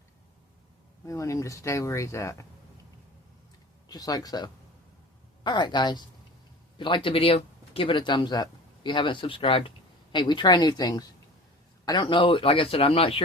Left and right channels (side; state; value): both; normal; correlation 0.39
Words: We want him to stay where he's at. Just like so. Alright guys. If you liked the video, give it a thumbs up. If you haven't subscribed, hey, we try new things. I don't know, like I said, I'm not